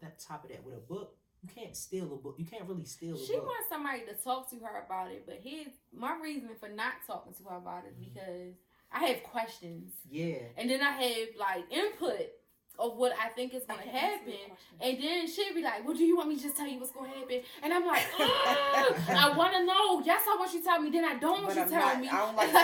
that top of that, with a book, you can't steal a book. You can't really steal a book. She wants somebody to talk to her about it, but my reason for not talking to her about it is because I have questions. Yeah. And then I have like input of what I think is going to happen. And then she'll be like, well, do you want me to just tell you what's going to happen? And I'm like, I want to know. Yes, I want you to tell me. Then I don't want you to tell me. I don't like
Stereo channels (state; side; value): identical; both; correlation 1.00